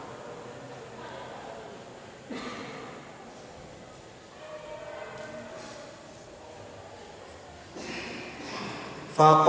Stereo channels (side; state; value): both; identical; correlation 1.00